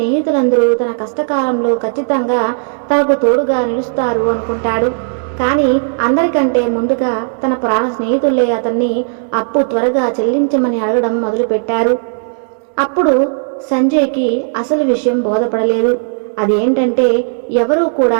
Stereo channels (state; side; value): silent; left; digital silence